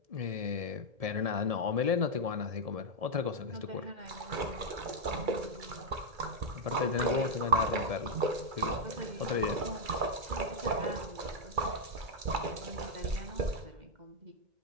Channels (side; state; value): left; late; 2.3 ms